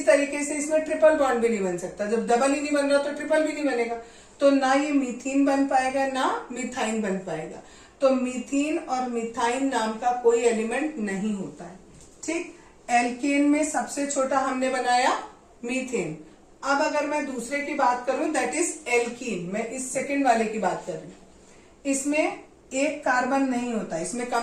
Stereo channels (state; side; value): identical; both; correlation 1.00